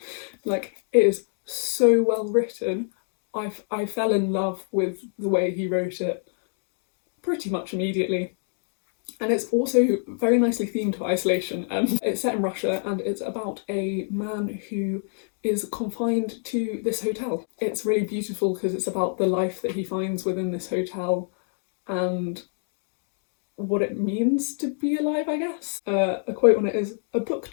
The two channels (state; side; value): silent; right; 58 dB below the other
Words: Like, it is so well written. I fell in love with the way he wrote it pretty much immediately. And it's also very nicely themed to isolation. It's set in Russia and it's about a man who is confined to this hotel. It's really beautiful because it's about the life that he finds within this hotel and what it means to be alive, I guess. A quote on it is, "A book